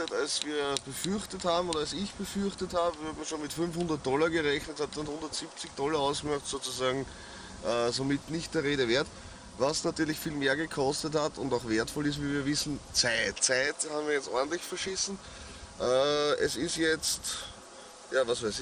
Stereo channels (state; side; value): identical; both; correlation 1.00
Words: als wir befürchtet haben oder als ich befürchtet habe. Wir haben schon mit $500 gerechnet, hat dann $170 ausgemacht, sozusagen somit nicht der Rede wert. Was natürlich viel mehr gekostet hat und auch wertvoll ist, wie wir wissen, Zeit. Zeit haben wir jetzt ordentlich verschissen. Es ist jetzt, ja was weiß